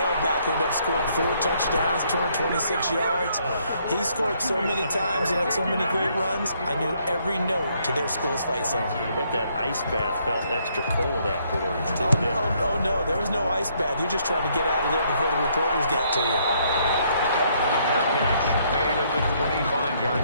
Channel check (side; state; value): both; inverted; correlation -0.69